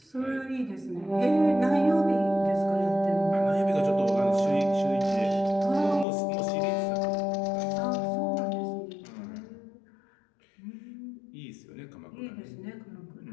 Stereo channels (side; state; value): right; drops out; at 6.1 s